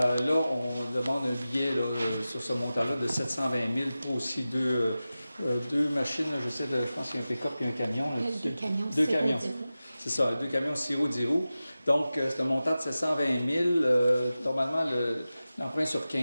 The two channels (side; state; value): both; inverted; correlation -0.95